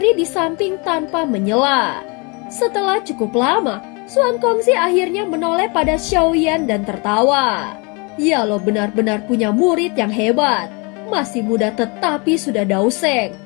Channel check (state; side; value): quieter; right; 30.5 dB